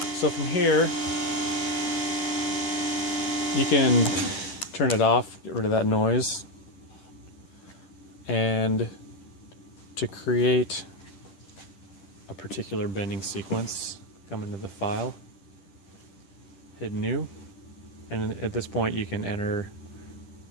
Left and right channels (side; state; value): right; late; 10 ms